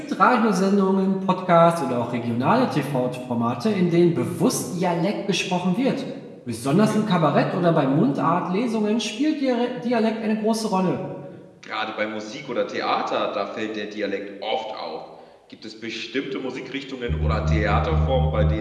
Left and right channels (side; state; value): both; identical; correlation 1.00